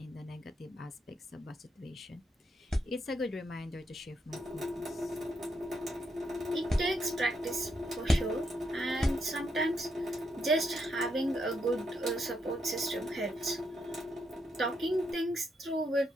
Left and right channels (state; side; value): normal; both; correlation 0.79